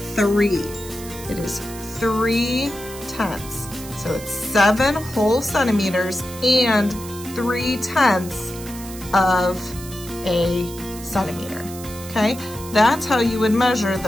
3. It is 3/10. So it's 7 whole centimeters and 3/10 of a centimeter, okay? That's how you would measure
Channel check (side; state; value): right; noise; hiss, 14 dB below the sound